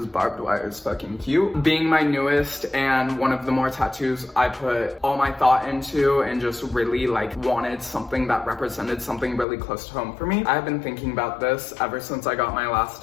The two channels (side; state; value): right; drops out; at 9.5 s